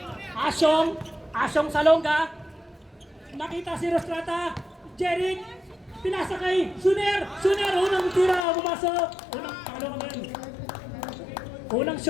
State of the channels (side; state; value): right; drops out; at 8.5 s